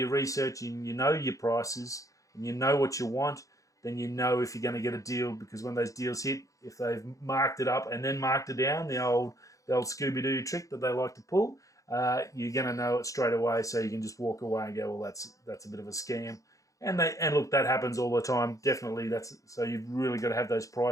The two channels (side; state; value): right; late; 0.16 ms